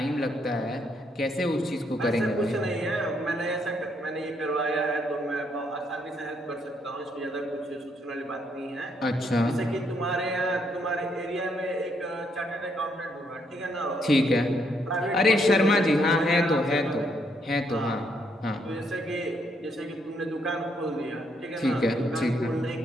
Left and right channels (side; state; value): both; normal; correlation 0.73